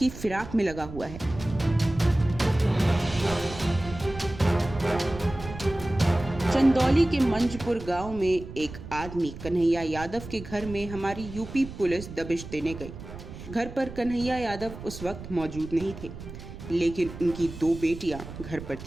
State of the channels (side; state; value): right; noise; rumble, 12 dB below the sound